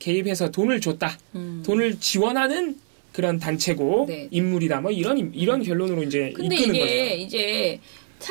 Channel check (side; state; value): left; silent; digital silence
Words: 개입해서 돈을 줬다. 돈을 지원하는 그런 단체고 네. 인물이다. 뭐 이런 결론으로 이제 근데 이끄는 이게 거죠. 이제